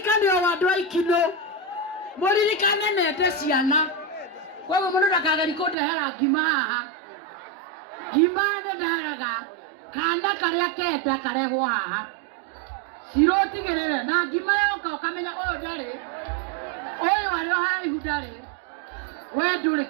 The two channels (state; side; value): drops out; left; at 5.8 s